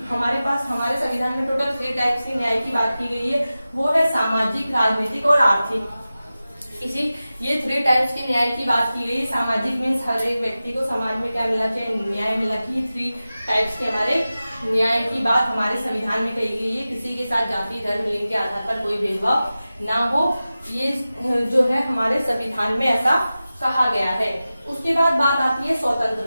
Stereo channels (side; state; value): both; inverted; correlation -0.95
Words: हमारे पास हमारे संविधान में टोटल 3 टाइप्स की न्याय की बात की गई है। वो है सामाजिक, राजनीतिक और आर्थिक। ये 3 टाइप्स के न्याय की बात की गई। सामाजिक मीन्स हर एक व्यक्ति को समाज में क्या मिलना चाहिए? न्याय मिलना चाहिए। 3 टाइप्स के हमारे न्याय की बात हमारे संविधान में कही गई है। किसी के साथ जाति, धर्म, लिंग के आधार पर कोई भेदभाव ना हो, ये जो है हमारे संविधान में ऐसा कहा गया है। उसके बाद बात आती है